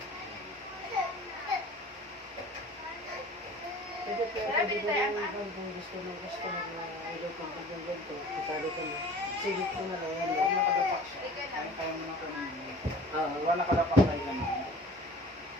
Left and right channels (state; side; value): normal; both; correlation 0.44